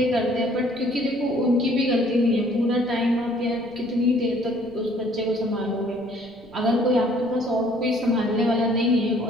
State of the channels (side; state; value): right; noise; rumble, 26 dB below the sound